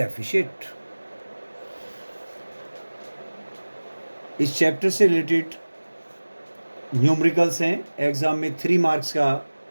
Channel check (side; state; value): both; inverted; correlation -1.00